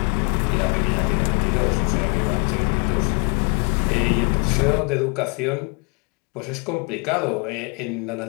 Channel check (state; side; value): quieter; right; 33.6 dB